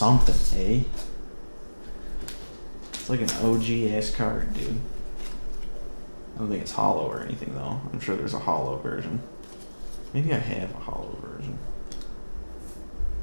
eh? It's like an OG ass card, dude. I don't think it's hollow or anything though. I'm sure there's a hollow version. Maybe I have a hollow version.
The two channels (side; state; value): both; inverted; correlation -1.00